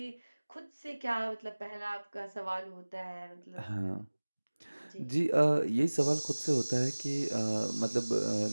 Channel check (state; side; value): inverted; both; correlation -1.00